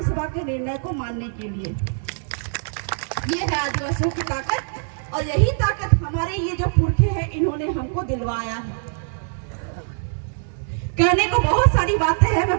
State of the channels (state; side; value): silent; left; 60 dB below the other